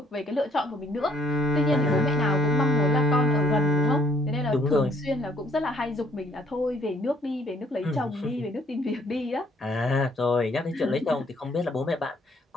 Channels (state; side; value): normal; both; correlation 0.63